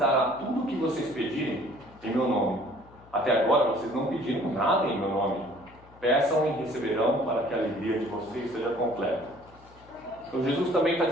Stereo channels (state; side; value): noise; left; hum, 24 dB below the sound